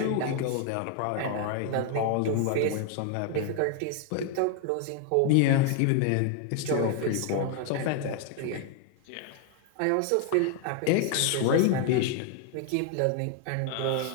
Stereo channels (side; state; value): both; different; correlation 0.00